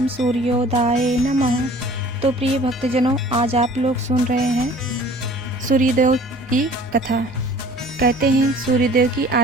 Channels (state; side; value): normal; both; correlation 0.49